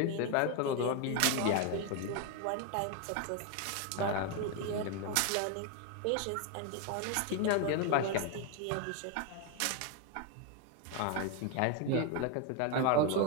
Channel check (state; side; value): different; both; correlation 0.01